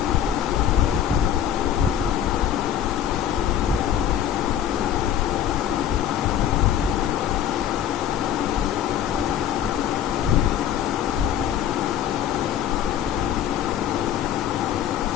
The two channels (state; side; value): quieter; right; 10.0 dB